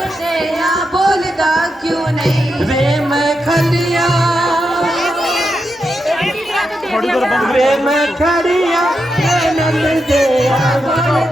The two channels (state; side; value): normal; both; correlation 0.86